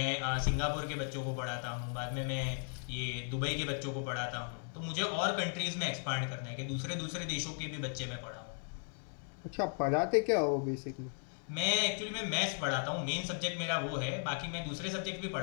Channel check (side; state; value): right; silent; 54 dB below the other